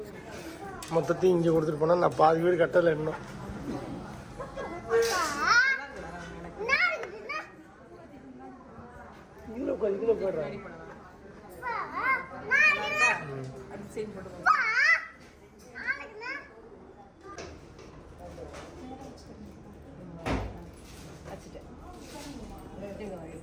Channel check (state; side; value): identical; both; correlation 1.00